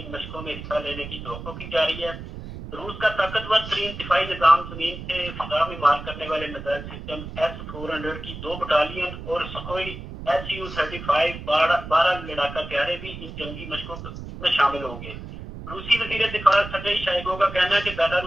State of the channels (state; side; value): noise; right; rumble, 10 dB below the sound